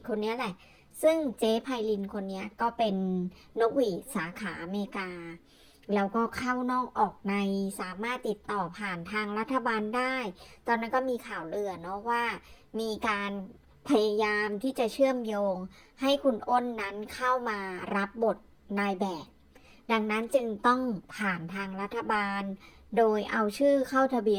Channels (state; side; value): identical; both; correlation 1.00